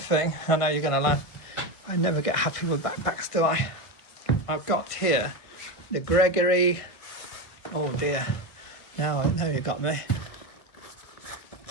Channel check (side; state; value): right; late; 1.5 ms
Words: I know you're going to laugh, I never get happy with backpacks, do I? I've got here the Gregory, oh dear, now you got me.